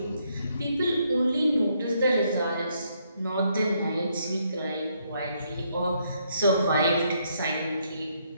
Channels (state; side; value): inverted; both; correlation -0.73